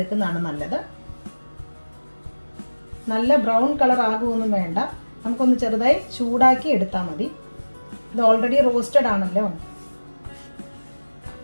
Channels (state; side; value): inverted; both; correlation -1.00